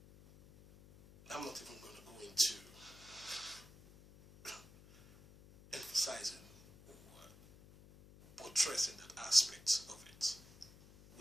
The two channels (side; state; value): left; noise; hum, 21 dB below the sound